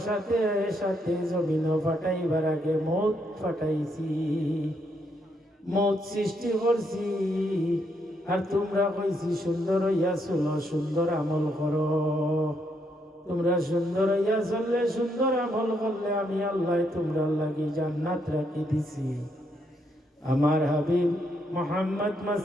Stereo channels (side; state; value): both; normal; correlation 0.76